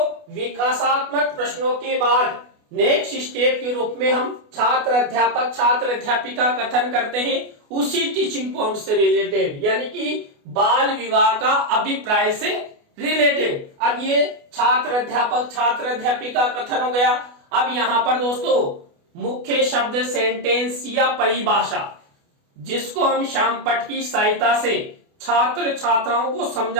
विकासात्मक प्रश्नों के बाद नेक्स्ट स्टेप के रूप में हम छात्र अध्यापक छात्र अध्यापिका कथन करते हैं उसी टीचिंग पॉइंट से रिलेटेड, यानी कि बाल विवाह का अभिप्राय से रिलेटेड। अब ये छात्र अध्यापक छात्र अध्यापिका कथन हो गया। अब यहाँ पर दोस्तों मुख्य शब्द सेंटेंस या परिभाषा, जिसको हम श्याम पट की सहायता से छात्र छात्राओं को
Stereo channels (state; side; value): late; left; 28 ms